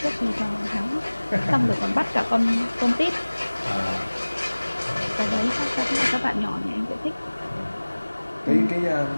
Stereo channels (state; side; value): inverted; both; correlation -1.00